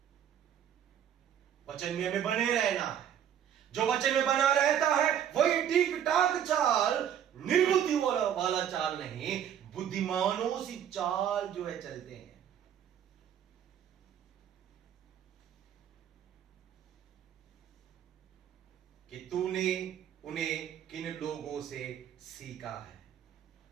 वचन में हमें बने रहना है। जो वचन में बना रहता है वही ठीक ठाक चाल, निर्बुद्धि वाला चाल नहीं, बुद्धिमानों सी चाल जो है चलते हैं। कि तूने उन्हें किन लोगों से सीखा है।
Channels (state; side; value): quieter; left; 9.6 dB